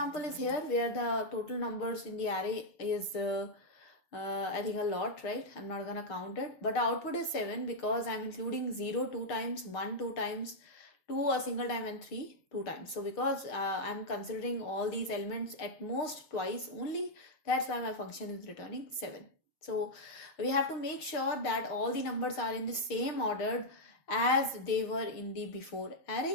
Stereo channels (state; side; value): late; right; 6.6 ms